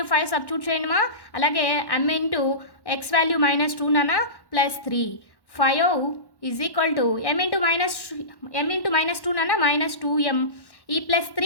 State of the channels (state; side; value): late; right; 1.1 ms